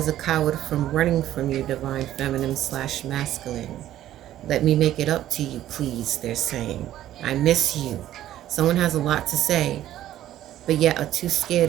a coward from running from you, divine feminine / masculine. Let me make it up to you, please, they're saying. I miss you. Someone has a lot to say, but yet are too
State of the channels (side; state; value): left; quieter; 12.9 dB